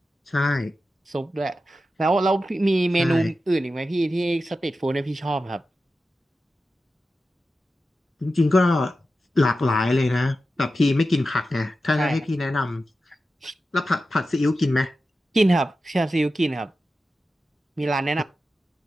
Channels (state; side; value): normal; both; correlation 0.92